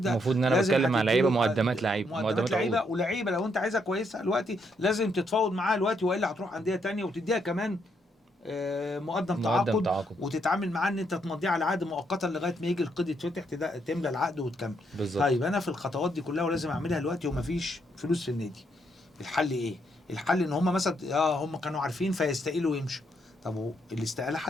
المفروض ان انا لازم بتكلم على لعيبه هتديله مقدمات مقدمات لعيبه، عقود. ولعيبه لو انت عايزها كويسه دلوقتي لازم تتفاوض معاها دلوقتي، والا هتروح انديه تانية وتديها كمان مقدم تعاقد، وتتعامل معاه ان انت تمضيه على عقد مؤقتا لغايه ما يجي القيد يتفتح، تملى العقد وتكمل. بالظبط. طيب انا في الخطوات دي كلها ولازم اعملها دلوقتي ومفيش فلوس في النادي، الحل ايه؟ الحل ان هم مثلا هم كانوا عارفين فيستقيلوا ويمشوا. طب الاستقاله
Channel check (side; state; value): both; normal; correlation 0.75